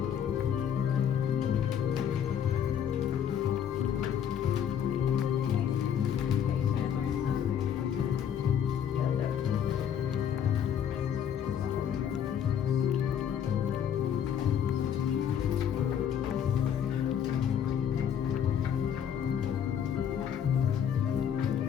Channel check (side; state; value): right; quieter; 8.8 dB